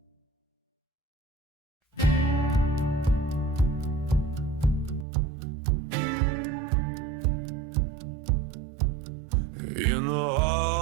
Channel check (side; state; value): left; drops out; at 5.1 s